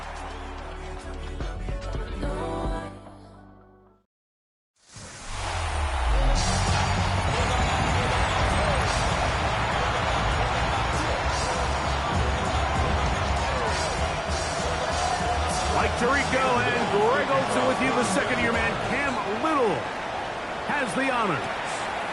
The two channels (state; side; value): identical; both; correlation 1.00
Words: Mike Tirico and Greg Olsen with you. The second-year man, Cam Little, has the honors.